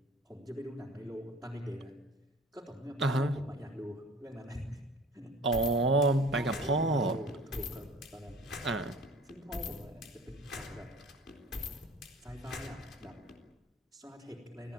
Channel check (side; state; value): both; normal; correlation 0.44